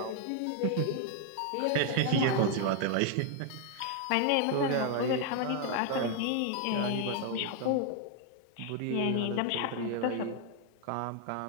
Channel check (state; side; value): different; both; correlation 0.00